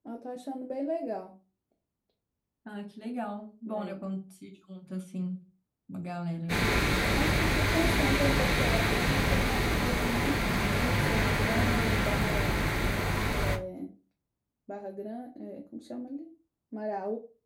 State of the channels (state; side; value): identical; both; correlation 1.00